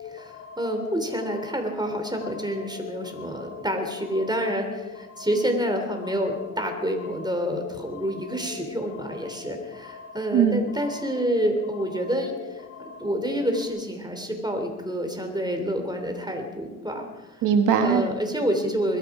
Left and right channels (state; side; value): normal; both; correlation 0.49